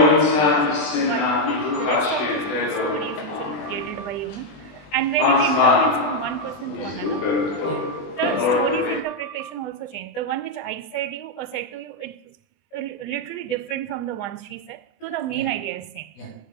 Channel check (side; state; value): right; late; 20 ms